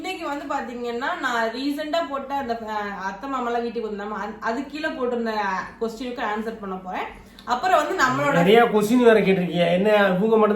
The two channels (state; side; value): identical; both; correlation 1.00